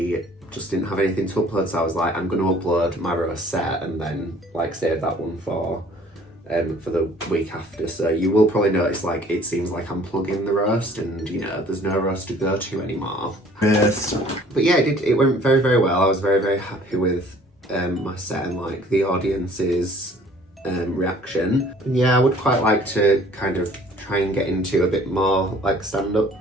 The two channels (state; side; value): normal; both; correlation 0.54